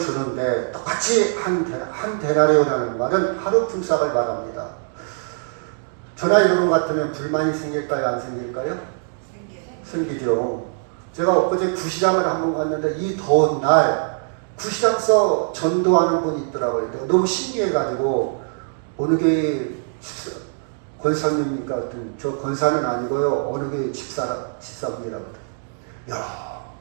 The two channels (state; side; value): silent; left; 64 dB below the other